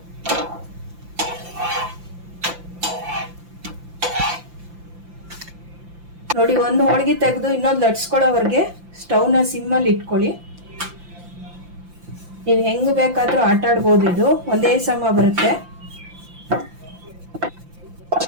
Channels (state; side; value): late; left; 5.8 ms